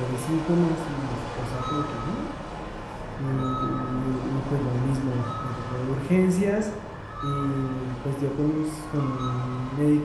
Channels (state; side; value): identical; both; correlation 1.00